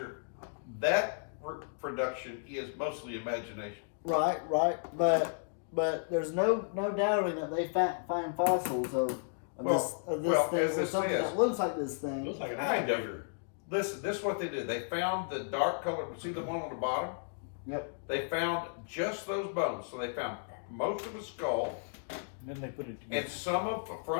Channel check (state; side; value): silent; right; digital silence